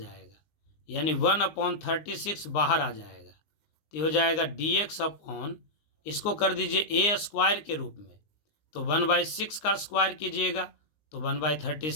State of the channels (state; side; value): late; right; 19 ms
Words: यानी 1/36 बाहर आ जाएगा, तो हो जाएगा dx अपॉन, इसको कर दीजिए a² के रूप में, तो 1/6 का स्क्वायर कीजिएगा तो